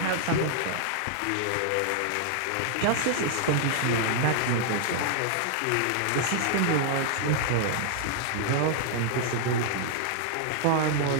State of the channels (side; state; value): both; different; correlation -0.01